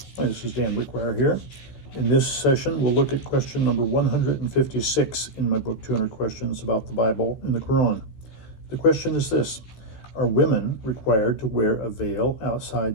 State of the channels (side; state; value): right; late; 15 ms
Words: this is Dan Wickwire here. In this session, we'll look at question number 156 in my book, 200 Questions About the Bible and the Qur'an. The question is this: are women required to wear a veil